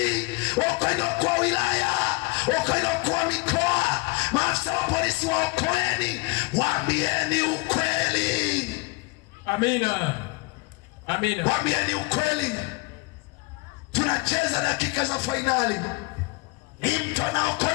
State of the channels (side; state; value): right; quieter; 25.5 dB